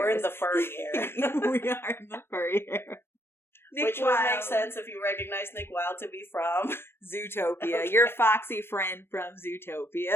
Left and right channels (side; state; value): right; late; 0.11 ms